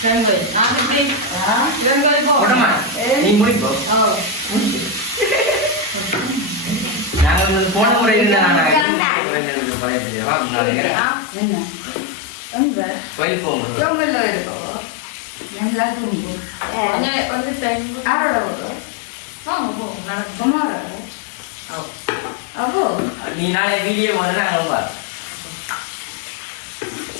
போடமா நீ முடிப்போ நாங்கள் போன முறை கோயில் போவோம் நீ நாளை வீடியோ வந்து நாங்கள்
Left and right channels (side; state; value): right; drops out; at 8.8 s